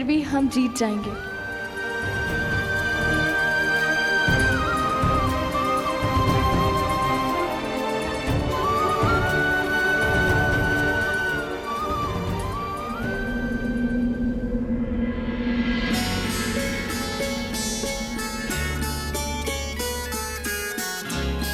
भी हम जीत जाएंगे।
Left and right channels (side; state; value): both; identical; correlation 1.00